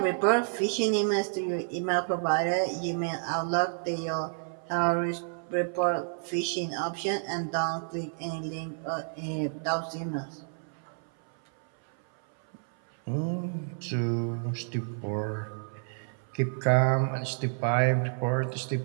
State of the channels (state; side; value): silent; left; 58 dB below the other